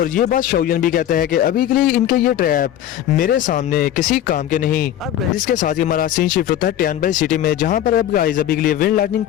ये बात शाओयन भी कहता है कि अभी के लिए इनके ये ट्रैप मेरे सामने किसी काम के नहीं। अब गाइस इसके साथ ही हमारा सीन शिफ्ट होता है टियानबाई सिटी में, जहां पर अब गाइस अभी के लिए विंड लाइटनिंग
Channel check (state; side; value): quieter; right; 11.5 dB